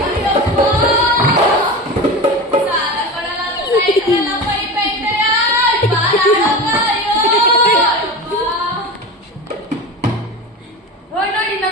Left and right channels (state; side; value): normal; both; correlation 0.28